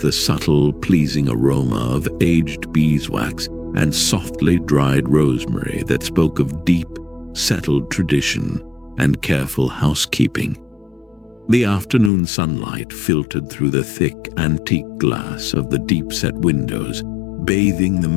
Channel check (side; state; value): right; drops out; at 12.1 s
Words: subtle, pleasing aroma of aged beeswax and softly dried rosemary that spoke of deep, settled tradition and careful housekeeping. The afternoon sunlight filtered through the thick, antique glass of the deep-set windows, bathing the